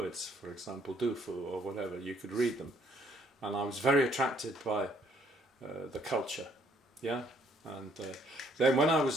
for example, Du Fu or whatever, you could read them. And I was very attracted by the culture, yeah. And then when I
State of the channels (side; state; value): both; normal; correlation 0.65